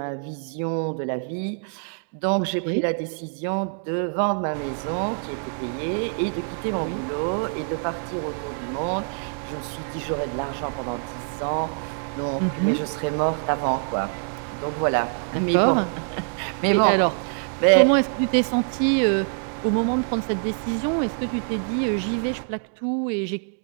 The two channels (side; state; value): left; silent; 56 dB below the other